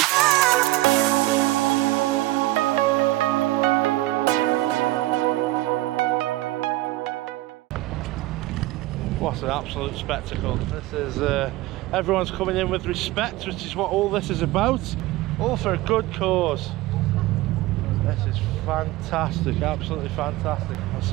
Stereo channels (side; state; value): left; quieter; 17.8 dB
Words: What an absolute spectacle. This is everyone's coming in with respect, which is what all this is about, all for a good cause. This is fantastic, absolutely fantastic. I'll